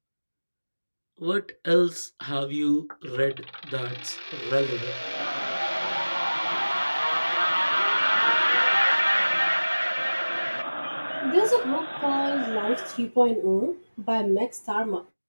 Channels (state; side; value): inverted; both; correlation -1.00